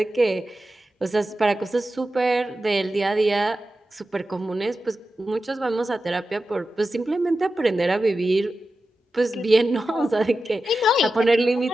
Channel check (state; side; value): normal; both; correlation 0.92